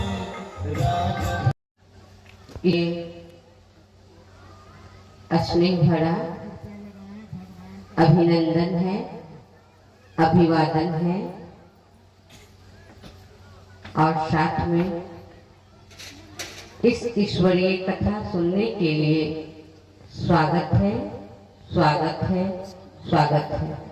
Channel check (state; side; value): identical; both; correlation 1.00